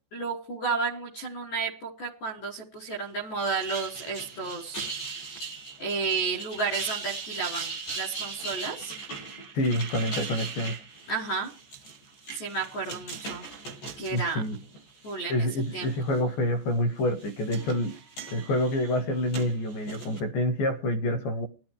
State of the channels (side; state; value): right; late; 14 ms